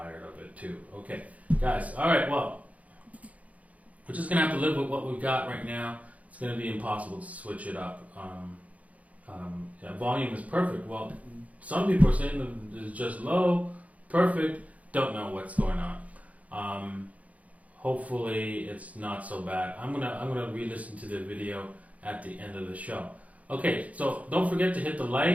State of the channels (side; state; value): left; late; 0.069 ms